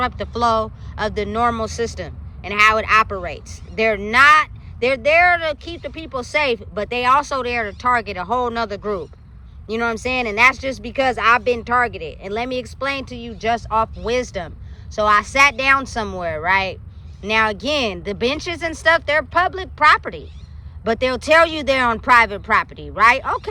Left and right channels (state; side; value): identical; both; correlation 1.00